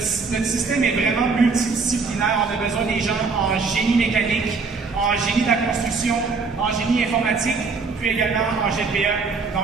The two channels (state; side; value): quieter; left; 4.6 dB